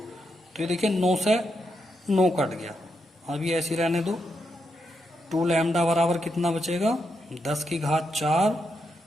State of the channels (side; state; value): both; normal; correlation 0.82